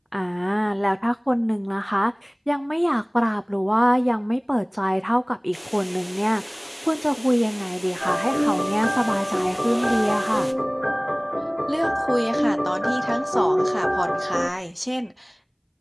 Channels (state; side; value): identical; both; correlation 1.00